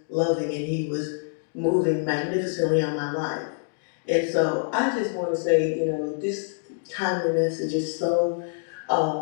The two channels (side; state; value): right; silent; digital silence